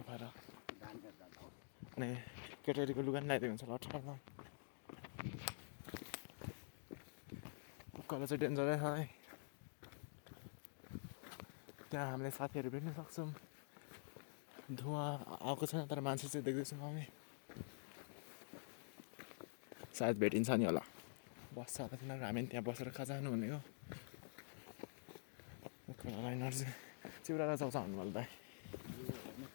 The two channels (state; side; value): silent; right; digital silence